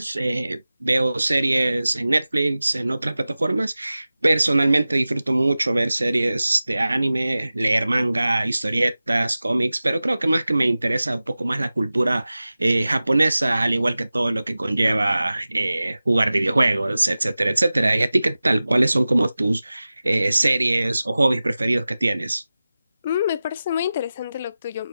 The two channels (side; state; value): both; inverted; correlation -0.96